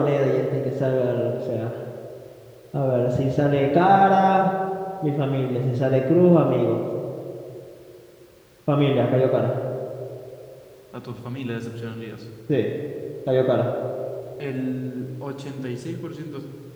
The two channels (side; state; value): both; identical; correlation 1.00